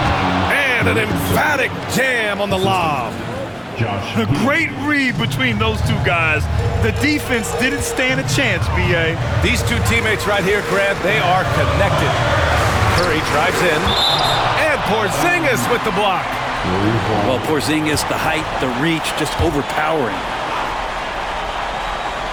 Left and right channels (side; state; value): both; identical; correlation 1.00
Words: And an emphatic jam on the lob. A great read between those two guys. The defense didn't stand a chance, B.A. These two teammates right here, Grant, they are connected. Curry drives in. And Porzingis with the block. Well, Porzingis, the height, the reach, just overpowering.